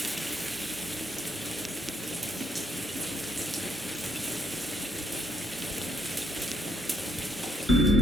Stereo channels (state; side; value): normal; both; correlation 0.71